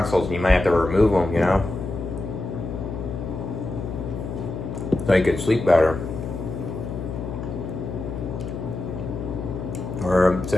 and you might have to remove them, you know, so you could sleep better. Or it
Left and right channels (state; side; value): noise; left; hum, 6 dB below the sound